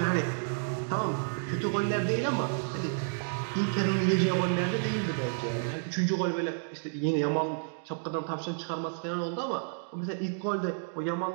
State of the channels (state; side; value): silent; left; digital silence